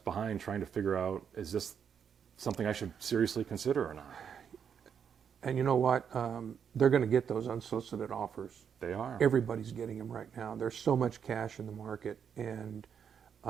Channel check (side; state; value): left; quieter; 7.5 dB